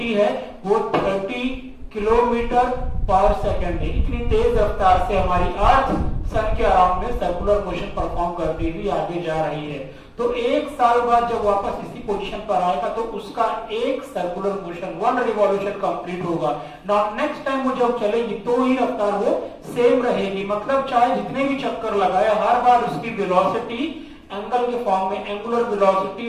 है वो 30 किलोमीटर पर सेकंड है। इतनी तेज रफ्तार से हमारी अर्थ सन के अराउंड में सर्कुलर मोशन परफॉर्म करती हुई आगे जा रही है। तो एक साल बाद जब वापस इसी पोजीशन पर आएगा तो उसका एक सर्कुलर मोशन, 1 रिवॉल्यूशन कंप्लीट होगा। नाउ नेक्स्ट टाइम वो जब चलेगी तो ही रफ्तार वो सेम रहेगी। मतलब चाहे जितने भी चक्कर लगाए हर बार उसकी वेलोसिटी एंगल के फॉर्म में एंगुलर वेलोसिटी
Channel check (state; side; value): identical; both; correlation 1.00